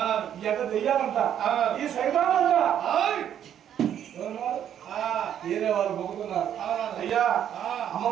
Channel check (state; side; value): quieter; left; 9.8 dB